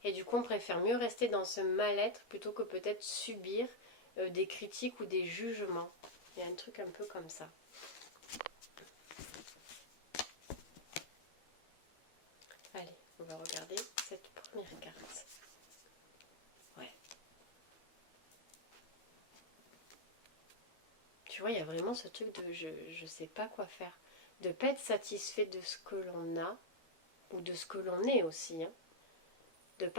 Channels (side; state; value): right; late; 12 ms